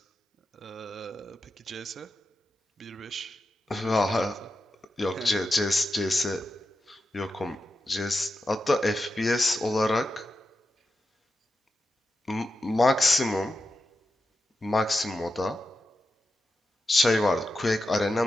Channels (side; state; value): both; normal; correlation 0.89